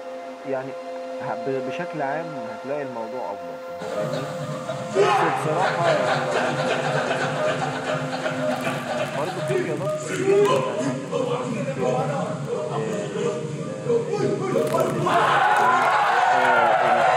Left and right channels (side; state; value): both; identical; correlation 1.00